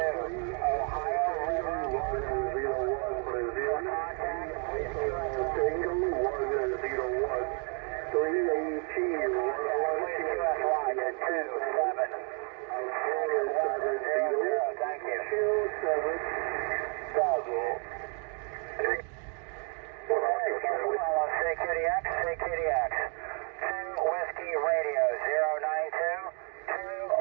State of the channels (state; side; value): quieter; left; 39.2 dB